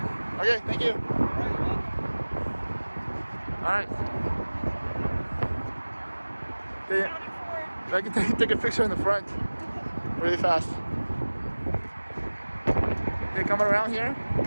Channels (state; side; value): inverted; both; correlation -1.00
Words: Okay, thank you. Alright, you're welcome. Alright. I can take a picture in the front really fast. Okay, coming around here